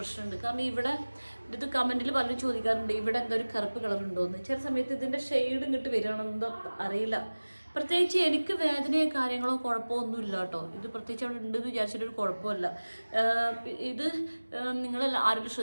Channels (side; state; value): both; inverted; correlation -1.00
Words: കാരണം ഇവിടെ ഇത് കമൻറ്റിൽ പലരും ചോദിക്കാറുണ്ട് ഇവിടെ എന്തോ ഒരു കറുപ്പ് കളറുണ്ടോ എന്ന്. ചില സമയത്ത് ഇതിൻ്റെ ഷെയ്ഡ് ഇങ്ങോട്ട് വരികയാണെന്നോ അറിയില്ല. പ്രത്യേകിച്ച് എനിക്ക് വേദനയോ കാര്യങ്ങളോ കുഴപ്പമോ ഒന്നുമില്ല കേട്ടോ. ഇത് പ്രത്യേകിച്ച് അവിടെ ഉണ്ടെന്ന് വിചാരിച്ചിട്ടൊരു കുഴപ്പമില്ല. ഇത് നിങ്ങളെല്ലാം ആരെങ്കിലും